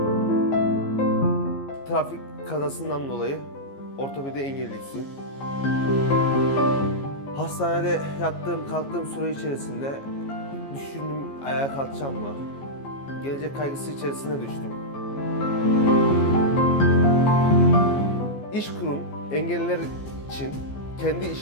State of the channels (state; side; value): late; right; 15 ms